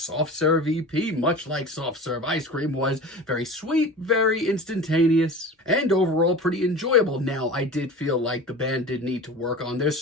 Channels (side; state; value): both; normal; correlation 0.35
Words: Serve EP, much like Soft Serve Ice Cream, was very sweet, very instantaneous, and overall pretty enjoyable. Now, I did feel like the band did need to work on their